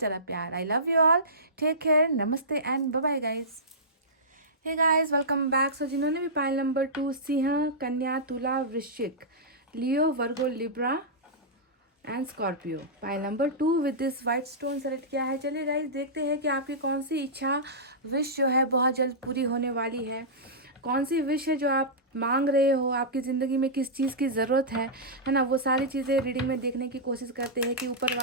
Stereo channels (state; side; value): normal; both; correlation -0.16